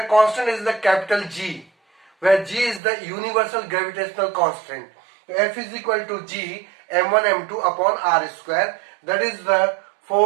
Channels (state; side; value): drops out; left; at 2.8 s